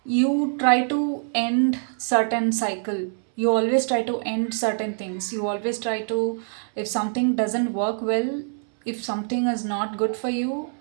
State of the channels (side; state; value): left; silent; 62 dB below the other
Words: You try to end certain cycle, you always try to end certain things, you always try to, if something doesn't work well, if something is not good for you,